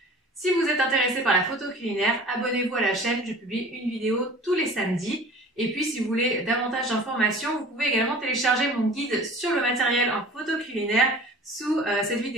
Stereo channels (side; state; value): both; normal; correlation 0.44